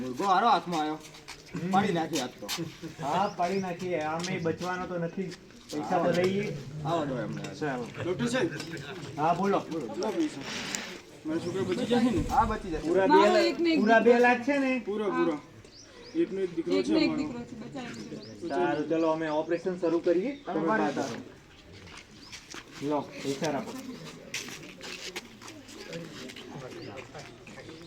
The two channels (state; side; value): identical; both; correlation 1.00